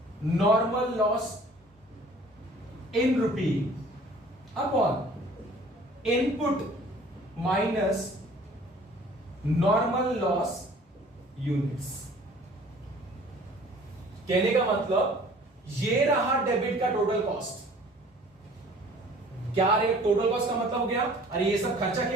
normal loss in rupee upon input minus normal loss units. कहने का मतलब ये रहा डेबिट का टोटल कॉस्ट। क्या रे टोटल कॉस्ट का मतलब हो गया? अरे ये सब खर्चा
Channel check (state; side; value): normal; both; correlation 0.51